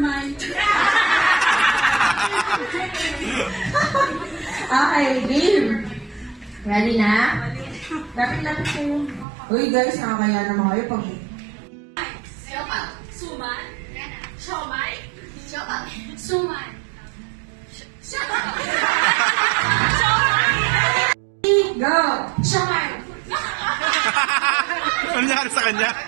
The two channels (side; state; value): left; drops out; at 9.2 s